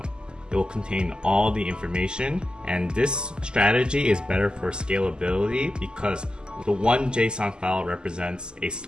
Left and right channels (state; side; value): late; left; 0.047 ms